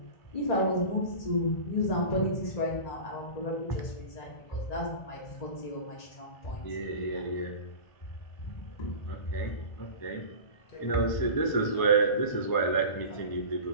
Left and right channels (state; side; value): late; right; 1.0 ms